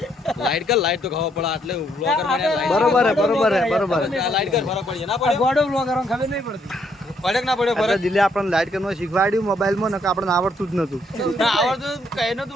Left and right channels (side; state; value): both; normal; correlation 0.71